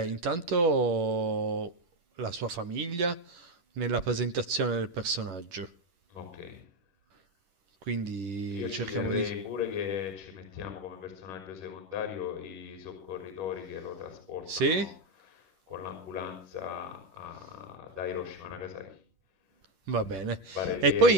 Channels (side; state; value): left; late; 10 ms